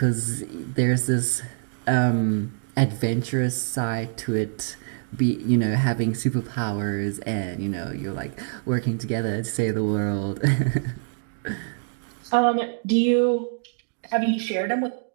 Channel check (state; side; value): silent; left; digital silence